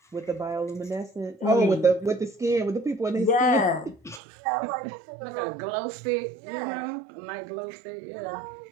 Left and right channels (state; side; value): drops out; left; at 4.2 s